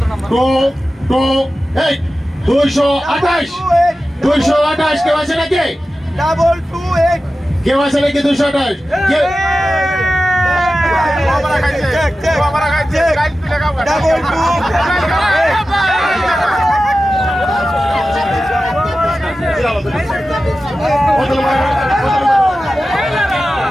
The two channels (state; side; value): normal; both; correlation 0.94